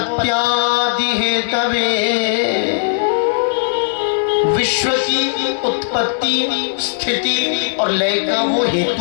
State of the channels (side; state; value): right; silent; digital silence